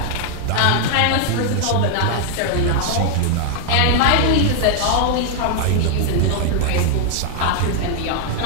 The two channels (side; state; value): both; different; correlation 0.00